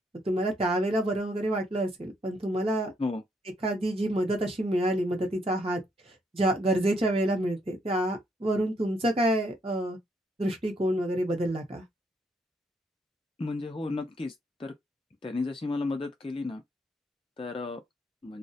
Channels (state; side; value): normal; both; correlation 0.73